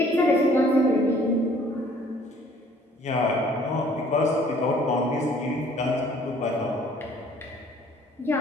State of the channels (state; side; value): normal; both; correlation 0.57